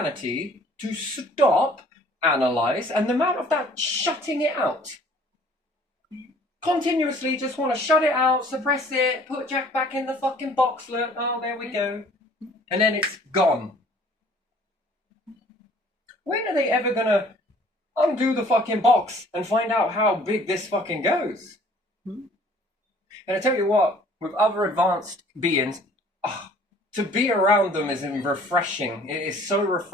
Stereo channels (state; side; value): normal; both; correlation 0.54